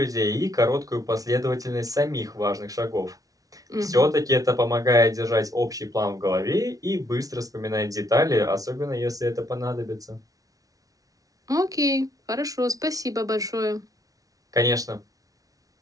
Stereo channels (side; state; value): left; late; 0.18 ms